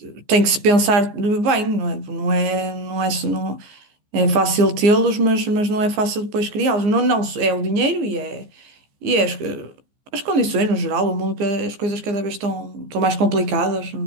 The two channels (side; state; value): left; late; 14 ms